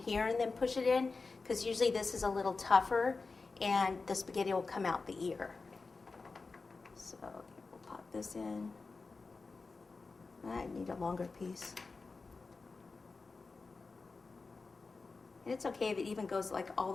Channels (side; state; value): right; quieter; 4.1 dB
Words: and then push it in, because usually this is a little tougher and the spaghetti will come out the ear. So we'll pop this in. I need a longer piece. And it's okay if it even goes like all the